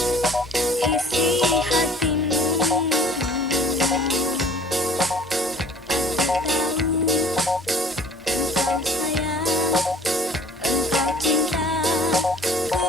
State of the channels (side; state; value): both; normal; correlation 0.50